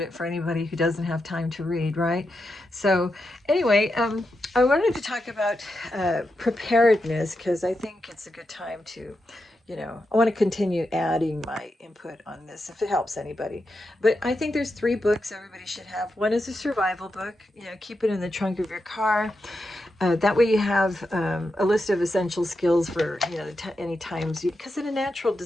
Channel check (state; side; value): normal; both; correlation 0.87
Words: it for anybody who doesn't have time to read, right? So, anyway, I wanted to talk about preparedness because I think it's a good time to, I want to continue adding my input on this if it helps anybody. But I think there's three books everybody should have. One is a survival book, keep it in the trunk of your car. That way you have a list of essential skills for, any times, because in a natural